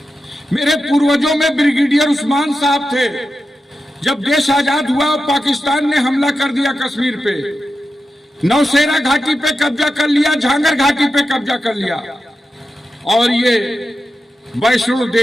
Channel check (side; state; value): both; normal; correlation 0.90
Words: मेरे पूर्वजों में ब्रिगेडियर उस्मान साहब थे। जब देश आजाद हुआ, पाकिस्तान ने हमला कर दिया कश्मीर पे, नौशेरा घाटी पे कब्जा कर लिया, झांगर घाटी पे कब्जा कर लिया, और ये वैष्णो